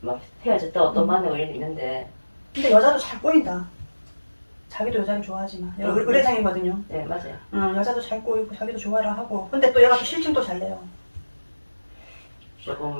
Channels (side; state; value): both; inverted; correlation -1.00